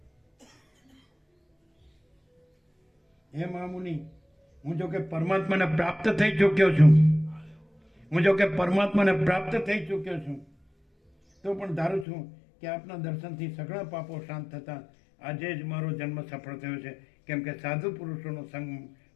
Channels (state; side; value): drops out; right; at 12.1 s